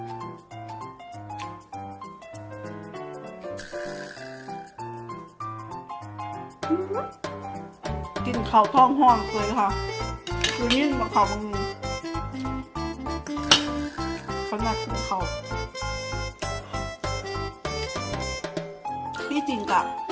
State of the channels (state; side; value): identical; both; correlation 1.00